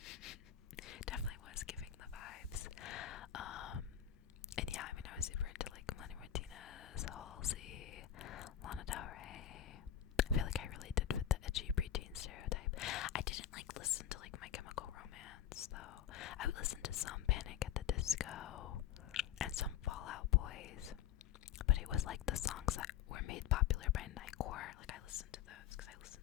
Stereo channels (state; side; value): quieter; right; 10.5 dB